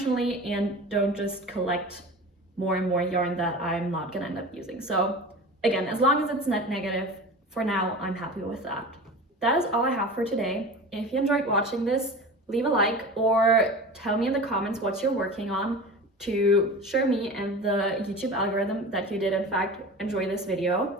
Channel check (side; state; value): both; normal; correlation 0.34